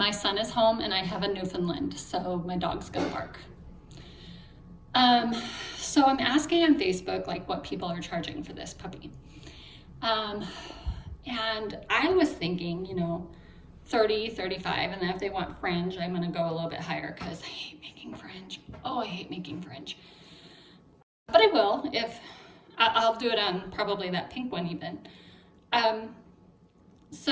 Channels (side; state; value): both; identical; correlation 1.00